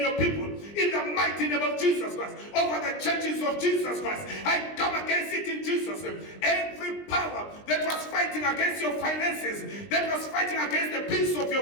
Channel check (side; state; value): right; late; 20 ms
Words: people. In the mighty name of Jesus Christ, over the churches of Jesus Christ, I come against it in Jesus' name. Every power that was fighting against your finances, that was fighting against the peace of